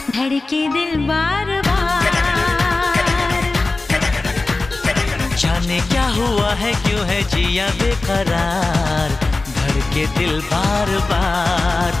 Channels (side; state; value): right; quieter; 3.3 dB